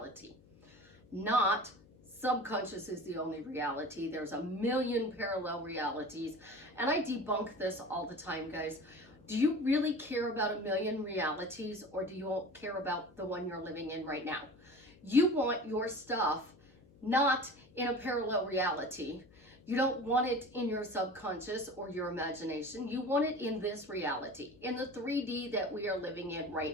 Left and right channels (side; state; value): left; noise; hum, 26 dB below the sound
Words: Not subconscious is the only reality. There's a million parallel realities. And I debunk this all the time, guys. Do you really care about a million realities, or do you care about the one you're living in right now? You want your stuff not in a parallel reality. You don't want it in your subconscious or your imagination. You want it in this reality, in the 3D that we are living in